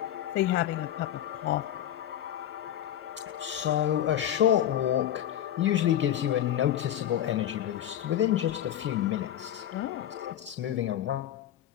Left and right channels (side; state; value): right; quieter; 11.3 dB